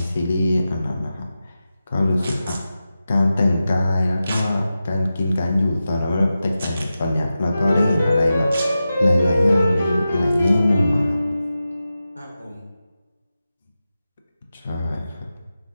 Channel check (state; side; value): inverted; both; correlation -0.92